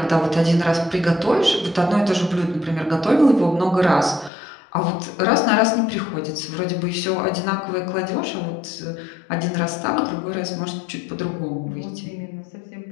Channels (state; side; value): drops out; right; at 4.3 s